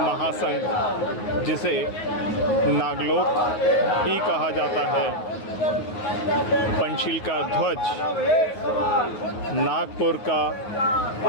जिसे नागलोक ही कहा जाता है, पंचशील का ध्वज नागपुर का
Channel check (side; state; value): right; late; 9.4 ms